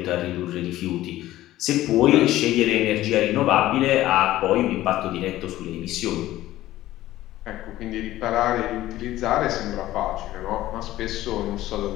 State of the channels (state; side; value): quieter; right; 15.1 dB